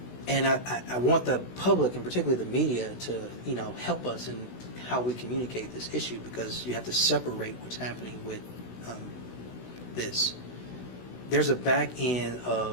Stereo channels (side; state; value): right; late; 16 ms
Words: And I want the public, and particularly the media, to help us in how we communicate this issue, because you have to separate what's happening with this. There's a back end